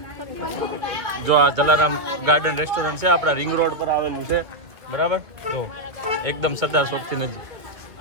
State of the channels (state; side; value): late; left; 2.4 ms